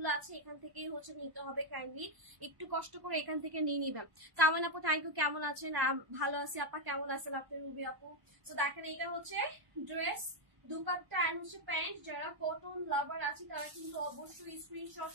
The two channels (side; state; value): left; late; 1.0 ms